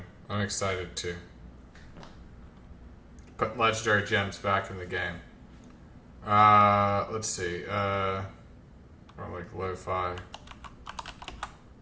I'm excited too. Put legendary gems back in the game. Let's see. Or like lo-fi.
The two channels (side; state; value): both; identical; correlation 1.00